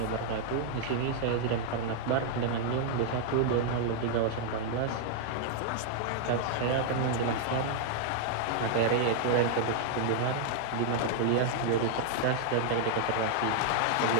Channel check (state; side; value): different; both; correlation -0.01